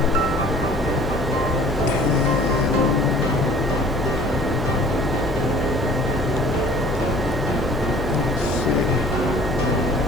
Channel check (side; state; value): both; normal; correlation 0.50